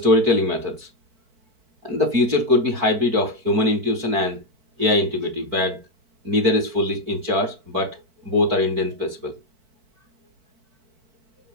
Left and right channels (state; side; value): late; left; 4.5 ms